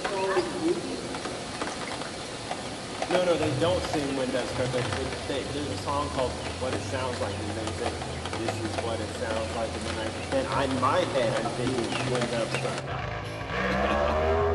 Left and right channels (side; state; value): both; identical; correlation 1.00